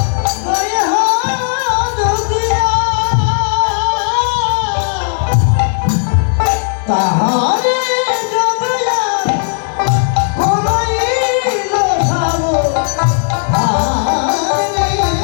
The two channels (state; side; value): silent; right; 68 dB below the other